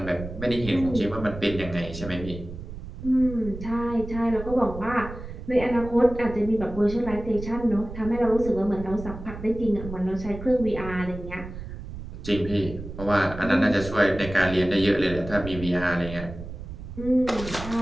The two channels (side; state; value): right; noise; rumble, 11 dB below the sound